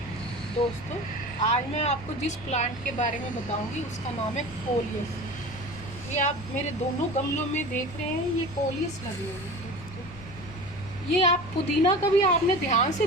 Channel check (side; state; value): left; noise; rumble, 17 dB below the sound